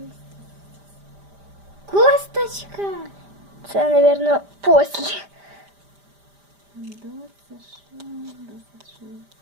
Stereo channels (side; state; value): left; late; 5.0 ms